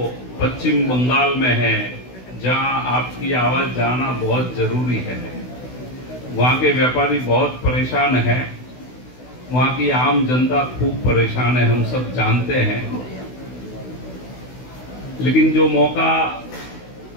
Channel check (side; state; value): right; late; 16 ms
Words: पश्चिम बंगाल में है जहां आपकी आवाज जाना बहुत जरूरी है। वहां के व्यापारी बहुत परेशान है, वहां की आम जनता खूब परेशान है, हम सब जानते हैं। लेकिन जो मौका